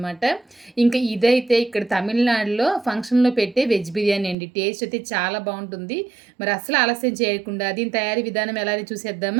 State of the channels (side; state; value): left; drops out; at 4.4 s